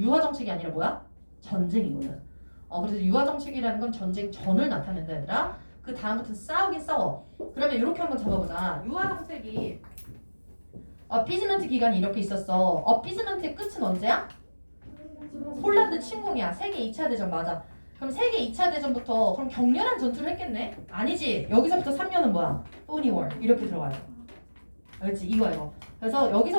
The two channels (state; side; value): inverted; both; correlation -1.00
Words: 유화 정책이 아니라 뭐야? 전쟁이거든. 그래서 유화 정책이라는 건 전쟁 전을 나타낸다 얘들아. 그 다음부터 싸우긴 싸워. 그러면 이렇게 한번 잡아보자. 유화 정책이 어피즈먼트 기간이 이렇게 있었어. 어피즈먼트의 끝은 언제야? 폴란드 침공이야. 세계 2차 대전 맞아. 그럼 세계 2차 대전부터 그럼 격렬한 전투를 했겠네? 아니지. 여기서부터 3년은 뭐야? 포니 워 이렇게 들어가요. 알겠지? 이거. 그래서